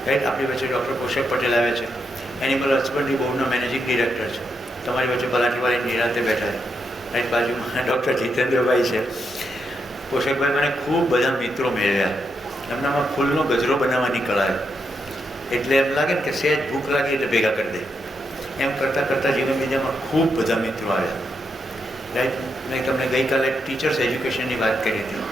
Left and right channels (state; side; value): normal; both; correlation 0.82